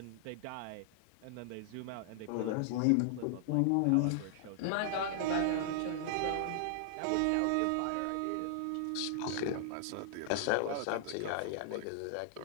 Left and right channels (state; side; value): different; both; correlation -0.01